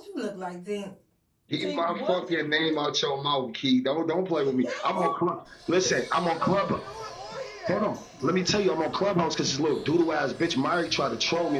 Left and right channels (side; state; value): both; identical; correlation 1.00